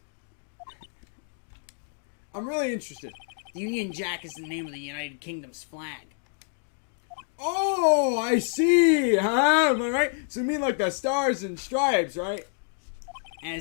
I'm really interested. Union Jack is the name of the United Kingdom's flag. Oh, I see! Huh? Am I right? So you mean like the stars and stripes, right?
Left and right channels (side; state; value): right; silent; digital silence